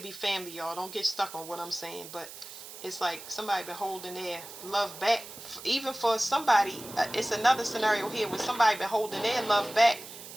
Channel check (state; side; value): noise; right; hiss, 14 dB below the sound